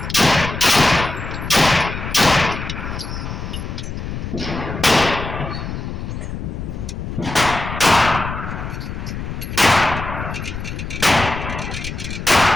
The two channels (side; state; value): left; noise; rumble, 6 dB below the sound